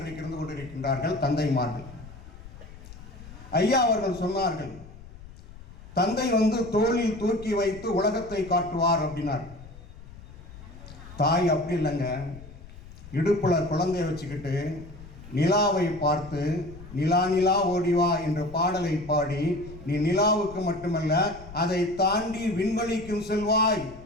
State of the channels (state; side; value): noise; left; rumble, 17 dB below the sound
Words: இருந்து கொண்டிருக்கின்றார்கள் தந்தைமார்கள். ஐயா அவர்கள் சொன்னார்கள், தந்தை வந்து தோளில் தூக்கி வைத்து உலகத்தை காட்டுவார் அப்படின்னார். தாய் அப்படி இல்லைங்க. இடுப்புல குழந்தைய வச்சுக்கிட்டு நிலாவை பார்த்து நிலா நிலா ஓடிவா என்ற பாடலை பாடி, நீ நிலாவுக்கு மட்டுமல்ல அதை தாண்டி விண்வெளிக்கும் செல்வாய்,